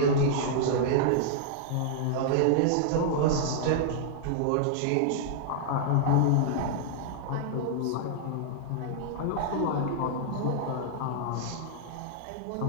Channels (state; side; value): different; both; correlation -0.01